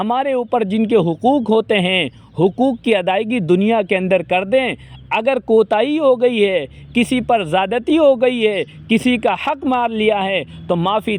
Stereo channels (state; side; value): identical; both; correlation 1.00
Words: اوپر جن کے حقوق ہوتے ہیں، حقوق کی ادائیگی دنیا کے اندر کر دیں۔ اگر کوتاہی ہو گئی ہے، کسی پر زیادتی ہو گئی ہے، کسی کا حق مار لیا ہے تو معافی